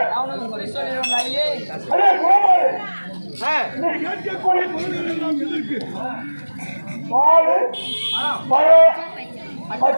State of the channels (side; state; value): both; inverted; correlation -1.00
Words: அவனுக்கு குறி சொல்லிடுவாங்க ஐயே. அடே கோமாளி, நீ கேட்கக்கூடிய பொருள்கள் எல்லாம் எதற்கு? பால், பழம்,